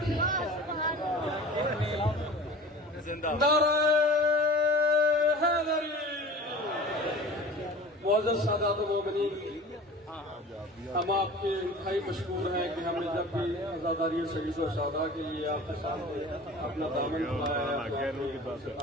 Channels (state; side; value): normal; both; correlation 0.39